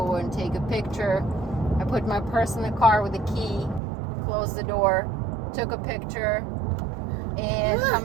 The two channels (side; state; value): left; drops out; at 3.8 s